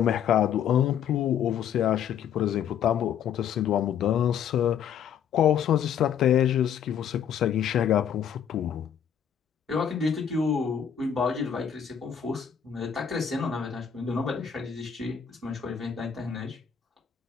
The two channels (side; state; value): right; quieter; 8.4 dB